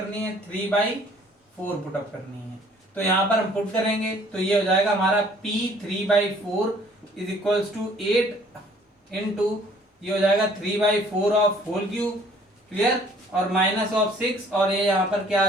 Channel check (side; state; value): both; normal; correlation 0.57